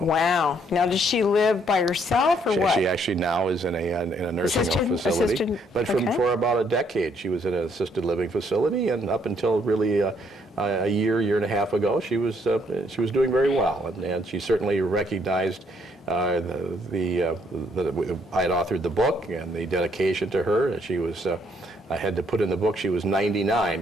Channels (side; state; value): both; normal; correlation 0.69